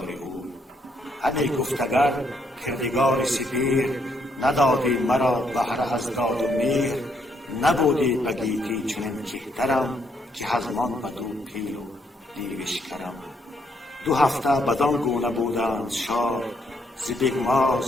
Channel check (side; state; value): both; normal; correlation 0.73